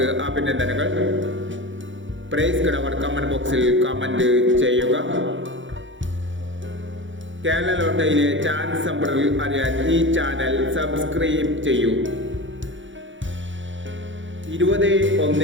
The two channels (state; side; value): late; left; 0.55 ms